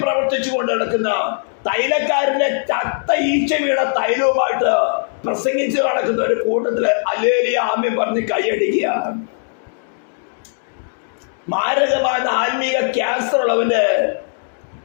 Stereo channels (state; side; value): silent; right; digital silence